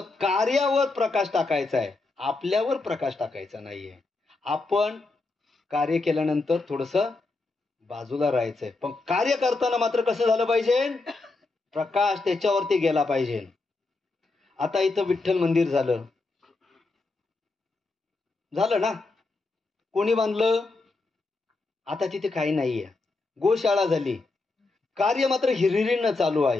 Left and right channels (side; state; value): right; quieter; 3.5 dB